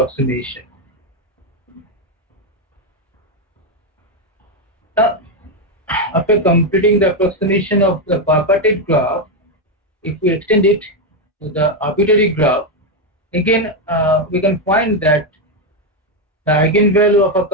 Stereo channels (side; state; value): both; normal; correlation 0.06